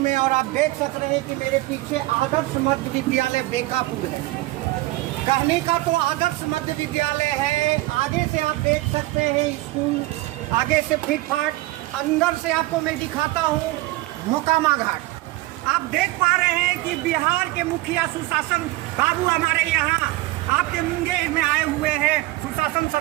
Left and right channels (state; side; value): quieter; left; 19.3 dB